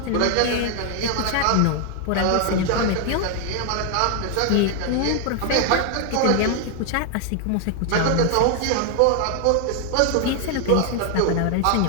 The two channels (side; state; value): both; different; correlation 0.00